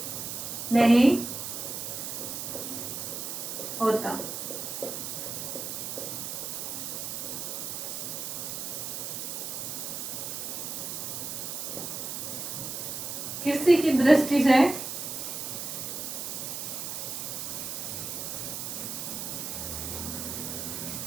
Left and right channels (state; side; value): noise; right; hiss, 5 dB below the sound